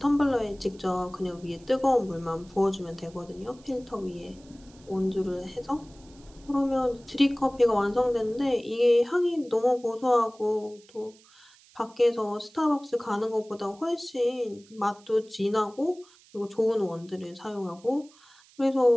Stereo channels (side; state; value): right; noise; hiss, 27 dB below the sound